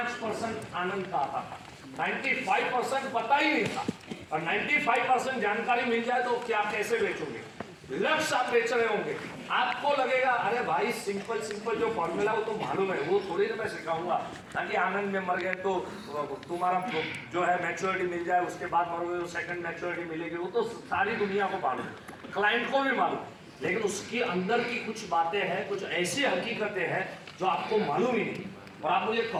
आनंद का आता था, 95% पता ही नहीं था। और 95% जानकारी मिल जाए तो क्या कैसे बेचोगे? लक्ष्य आप बेच रहे होंगे, आपको लगेगा अरे भाई सिंपल जो फॉर्मूला वो तो मालूम है, वो थोड़ी ना मैं सिखाऊंगा, ताकि आनंद में मर गए तो तुम्हारा जो है मैच्योरिटी मिल जाए, उसके बाद मरोगे तो सेकंड मैच्योरिटी मिलेगी, वो तो सारी दुनिया को मालूम है, क्लाइंट को भी मालूम। लेकिन उसके अंदर की कुछ बातें हैं, कुछ ऐसी हकीकतें हैं जो आपको मालूम ही नहीं। और आप मुझे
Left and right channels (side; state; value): both; identical; correlation 1.00